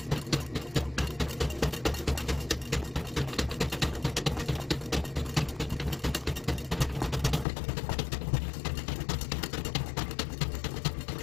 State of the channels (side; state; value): right; drops out; at 7.5 s